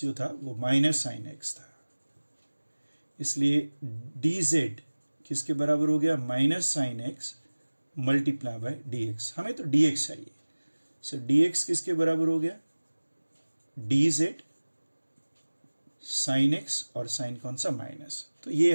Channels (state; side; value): inverted; both; correlation -1.00